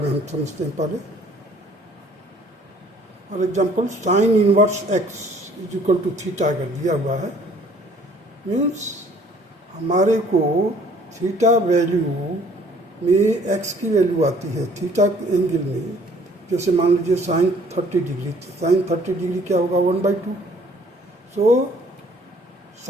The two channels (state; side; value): normal; both; correlation 0.57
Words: में हम समझते हैं पहले। For example sine inverse X is equal to theta अगर दिया हुआ है, मीन्स हमारे को थीटा वैल्यू में एक्स की वैल्यू आती है थीटा एंगल में। जैसे मान लीजिए साइन 30 डिग्री, साइन 30 डिग्री क्या होगा 1/2। So